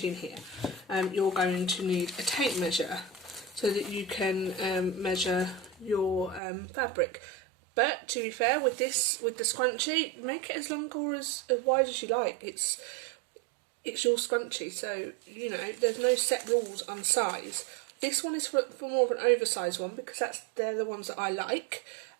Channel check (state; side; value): drops out; left; at 6.4 s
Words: here. You're going to need a tape measure so that you can measure your fabric. But to be fair, with the scrunchie, make it as long or as wide as you like. It's your scrunchie, so you know there's no set rules on size. This one is for more of an oversized one because they're the ones that I like.